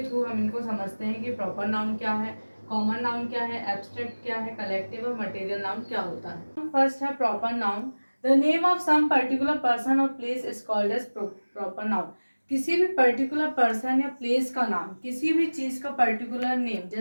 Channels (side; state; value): both; inverted; correlation -1.00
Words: थ्रू हम इनको समझते हैं कि प्रॉपर नाउन क्या है, कॉमन नाउन क्या है, एब्स्ट्रैक्ट क्या है, कलेक्टिव और मटेरियल नाउन क्या होता है। फर्स्ट है proper noun. The name of some particular person और place is called as proper noun. किसी भी पर्टिकुलर पर्सन या प्लेस का नाम, किसी भी चीज का पर्टिकुलर नेम,